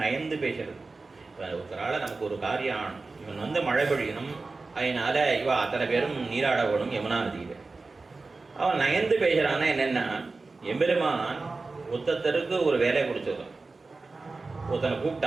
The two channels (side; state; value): left; quieter; 3.7 dB